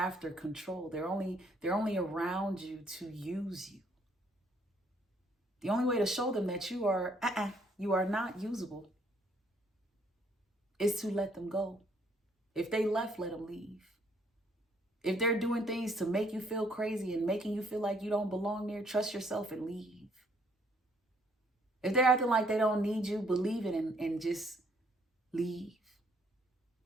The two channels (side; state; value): both; normal; correlation 0.66